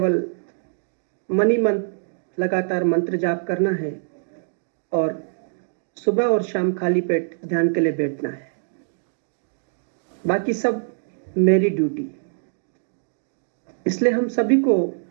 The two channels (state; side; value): silent; left; digital silence